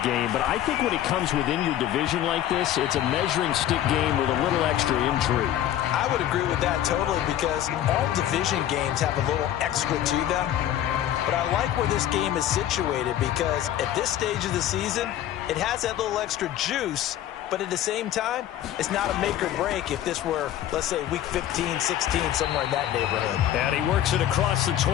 game. But I think when it comes within your division like this, it's a measuring stick game with a little extra intrigue. I would agree with that totally, because all division games have a little extra to them. But I like where this game is situated, because at this stage of the season, it has that little extra juice. But at the same time, it's not a make or break if this were, let's say, week 15, 16, somewhere in that neighborhood. And he works it across the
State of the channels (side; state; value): right; quieter; 11.9 dB